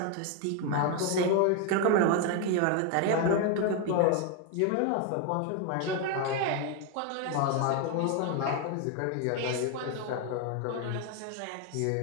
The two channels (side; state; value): both; different; correlation 0.01